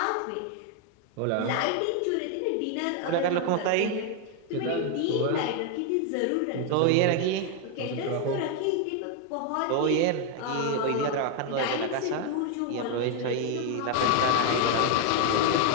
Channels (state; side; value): different; both; correlation 0.01